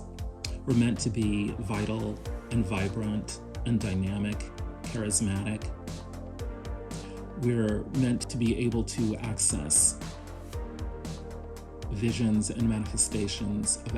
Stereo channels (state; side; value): identical; both; correlation 1.00